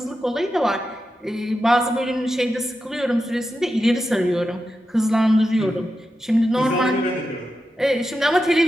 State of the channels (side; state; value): both; normal; correlation 0.89